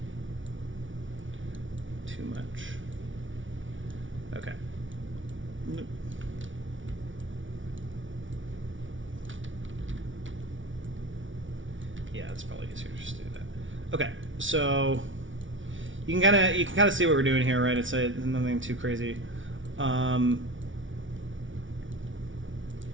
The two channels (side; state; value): left; late; 0.56 ms